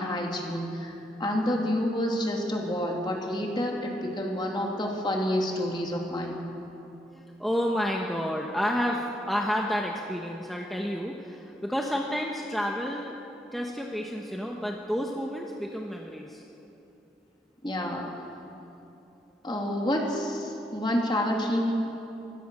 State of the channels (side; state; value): both; normal; correlation 0.76